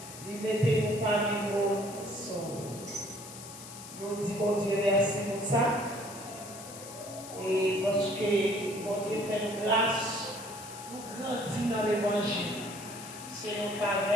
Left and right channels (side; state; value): left; noise; hiss, 14 dB below the sound